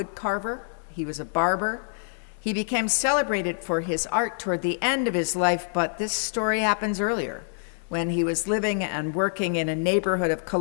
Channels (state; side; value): silent; right; 61 dB below the other